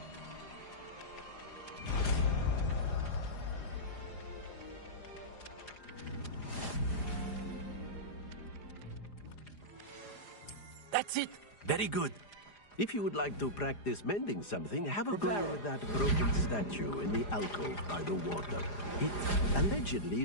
That's it. Very good. If you would like to practice mending something, have a go with that broken statue in the alcove by the water. It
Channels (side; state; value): right; late; 4.9 ms